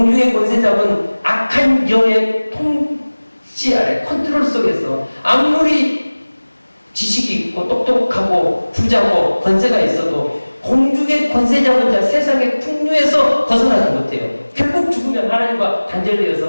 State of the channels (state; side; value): inverted; both; correlation -1.00